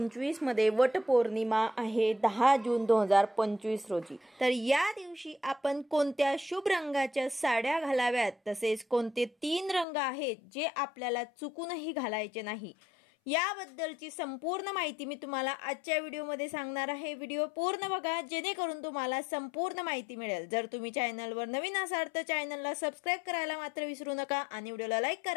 मध्ये वट पौर्णिमा आहे 10 जून 2025 रोजी। तर या दिवशी आपण कोणत्या शुभ रंगाच्या साड्या घालाव्यात, तसेच कोणते 3 रंग आहेत जे आपल्याला चुकूनही घालायचे नाही, याबद्दलची संपूर्ण माहिती मी तुम्हाला आजच्या व्हिडिओमध्ये सांगणार आहे। व्हिडिओ पूर्ण बघा जेणेकरून तुम्हाला संपूर्ण माहिती मिळेल। जर तुम्ही चॅनलवर नवीन असाल तर चॅनलला सबस्क्राइब करायला मात्र विसरू नका आणि व्हिडिओला लाईक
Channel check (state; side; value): drops out; right; at 9.9 s